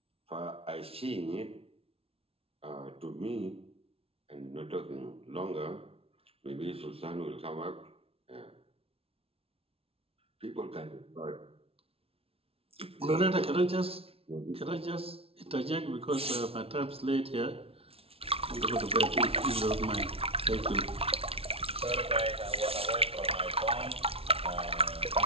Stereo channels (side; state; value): left; late; 0.27 ms